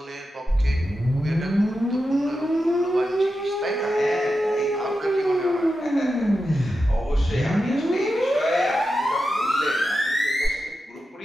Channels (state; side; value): normal; both; correlation 0.90